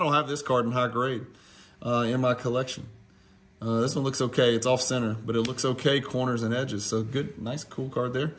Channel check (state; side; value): identical; both; correlation 1.00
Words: have this card in high grade in my collection. This one looks okay. It's off center, but it looks okay, corners and edges. So good, nice, cool card there.